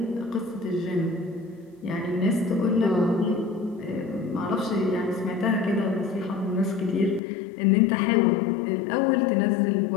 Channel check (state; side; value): drops out; right; at 7.2 s